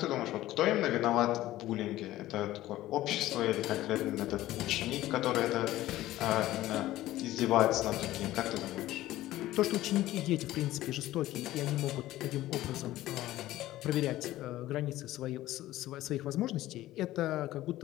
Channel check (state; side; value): quieter; right; 15.5 dB